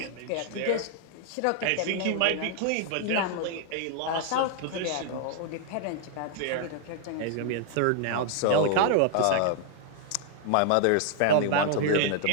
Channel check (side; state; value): both; different; correlation 0.00